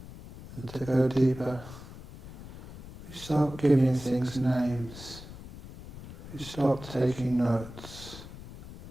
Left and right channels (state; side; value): noise; left; rumble, 15 dB below the sound